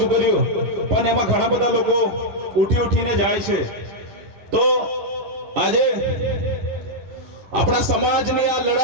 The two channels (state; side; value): late; left; 10 ms